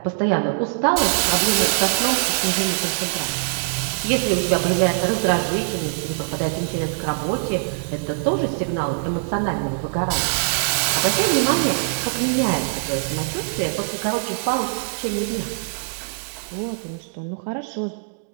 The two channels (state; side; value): silent; left; digital silence